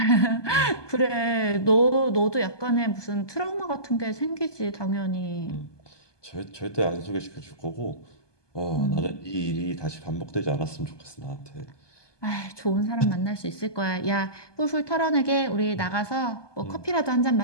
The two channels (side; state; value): right; late; 1.2 ms